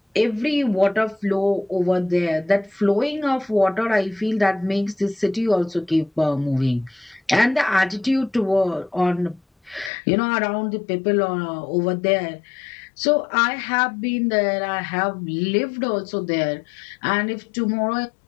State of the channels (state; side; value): drops out; right; at 9.9 s